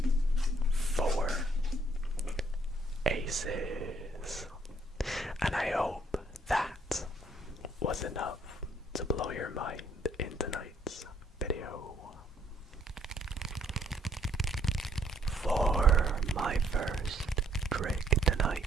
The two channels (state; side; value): normal; both; correlation 0.67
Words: 4 aces. And I hope that was enough to blow your mind in tonight's video. For my first trick